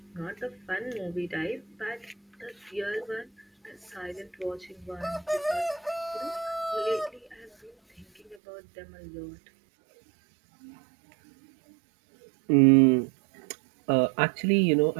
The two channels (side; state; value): left; drops out; at 8.3 s